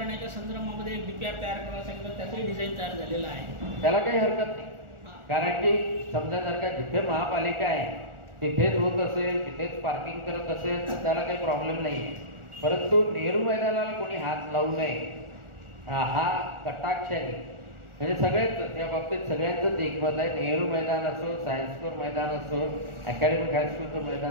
संदर्भामध्ये एक डीपीआर तयार करायला सांगितलं, त्याचंही डिझाईन तयार झालेलं आहे. त्याला काही हरकत नाही, कारण की समजा जर का जिथे महापालिका आहे तिथेच होत असेल, तिथेच पार्किंग करत असेल तर त्याला काही प्रॉब्लेम नाही. परंतु नेहरू मैदानाला कोणी हात लावू नये हा कटाक्षाने म्हणजे सगळेच त्या बाबतीत सगळ्यांचंच एकमत आहे. नेहरू मैदान असो, सायन्स कोर मैदान असो, अकॅडमिक हायस्कूलचं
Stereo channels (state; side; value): late; left; 1.4 ms